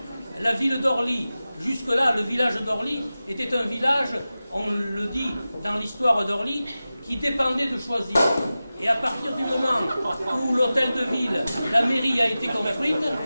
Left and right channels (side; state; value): both; inverted; correlation -0.95